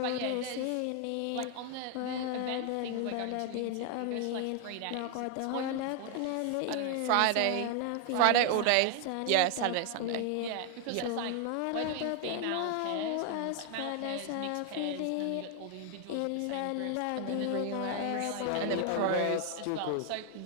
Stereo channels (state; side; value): different; both; correlation 0.00